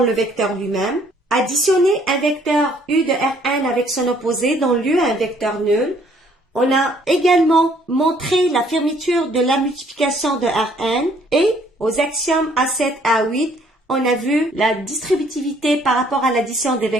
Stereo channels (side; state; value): both; normal; correlation 0.62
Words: le vecteur lui-même, additionner un vecteur U de Rn avec son opposé dans lieu à un vecteur nul. On a également montré la fermeture de la multiplication de Rn et aux axiomes A7 à A8, on a vu la distributivité par rapport à l'addition des